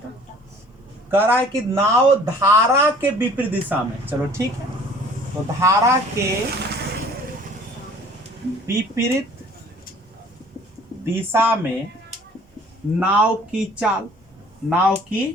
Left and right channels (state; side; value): normal; both; correlation 0.52